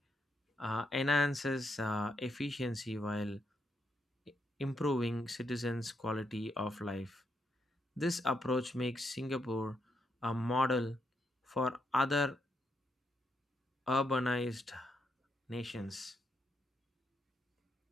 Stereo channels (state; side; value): normal; both; correlation 0.80